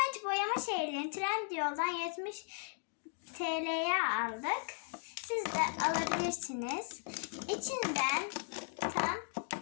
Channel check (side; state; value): right; silent; 53 dB below the other